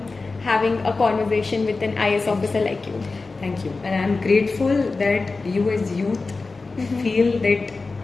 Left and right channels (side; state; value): right; quieter; 3.8 dB